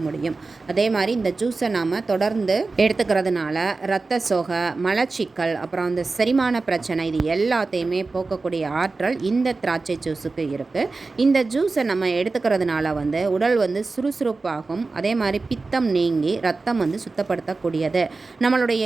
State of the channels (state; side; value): quieter; left; 3.8 dB